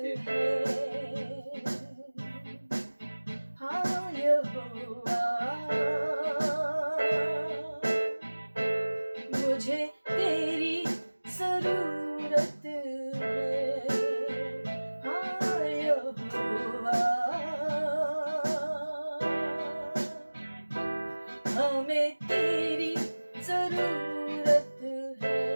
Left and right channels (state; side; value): inverted; both; correlation -1.00